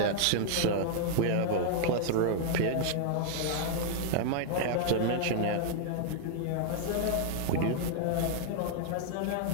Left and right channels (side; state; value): both; different; correlation -0.01